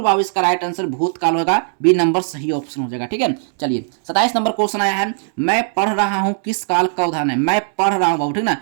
बाबू इसका राइट आंसर भूतकाल होगा, बी नंबर सही ऑप्शन हो जाएगा, ठीक है। चलिए 27 नंबर क्वेश्चन आया है, मैं पढ़ रहा हूँ, किस काल का उदाहरण है? मैं पढ़ रहा हूँ बाबू, ठीक ना,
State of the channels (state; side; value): silent; left; 65 dB below the other